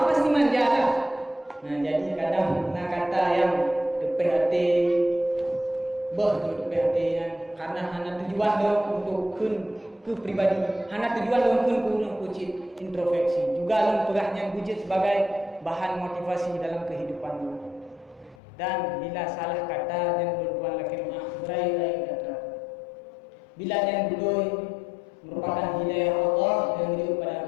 pasti manja lah. Nah, jadi kadang kata yang PHT PHT yang karena hanya tujuan dong untuk ke pribadi, hanya tujuan dong untuk kucit introspeksi. Juga long perahnya kucit sebagai bahan motivasi dalam kehidupan lo. Dan bila salah kata dan berbuat laki berai kata. Bila yang budoi merupakan hidayah Allah yang itu pada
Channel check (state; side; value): drops out; right; at 18.4 s